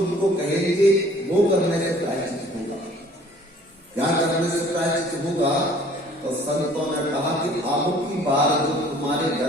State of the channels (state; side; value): normal; both; correlation 0.54